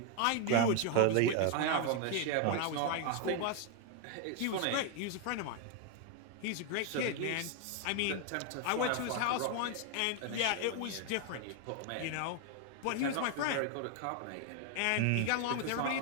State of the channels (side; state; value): both; different; correlation 0.01